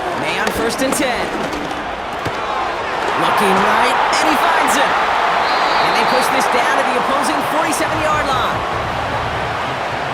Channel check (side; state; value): both; identical; correlation 1.00